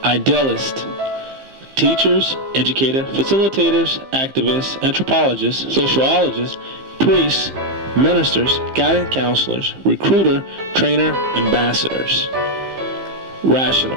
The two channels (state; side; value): late; left; 15 ms